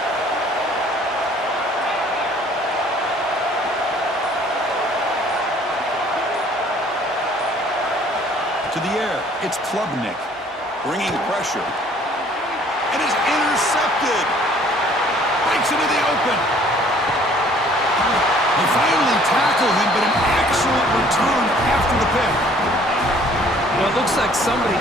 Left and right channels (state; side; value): normal; both; correlation 0.57